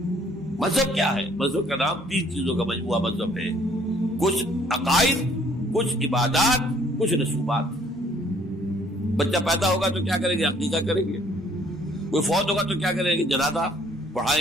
मजहब क्या है? मजहब का नाम 3 चीजों का मजमूआ मजहब है। कुछ अकाइद, कुछ इबादात, कुछ रसूमात। बच्चा पैदा होगा तो क्या करेंगे? अकीका करेंगे। کوئی فوت ہوگا تو کیا کریں گے؟ جنازہ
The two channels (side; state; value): both; normal; correlation 0.61